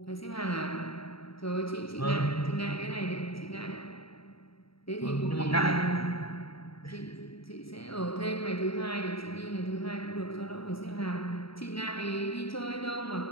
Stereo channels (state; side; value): late; right; 0.75 ms